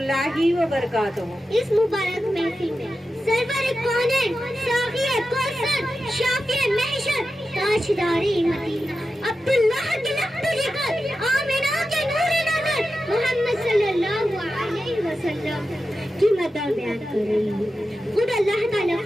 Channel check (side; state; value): both; normal; correlation 0.91